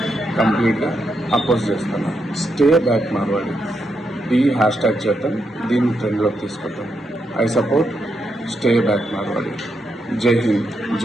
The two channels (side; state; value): both; normal; correlation 0.82